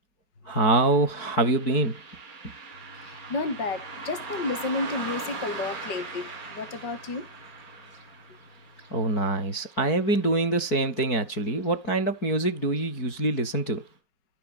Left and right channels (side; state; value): right; late; 4.6 ms